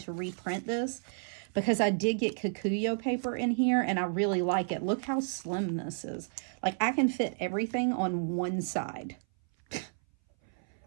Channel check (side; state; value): left; silent; 57 dB below the other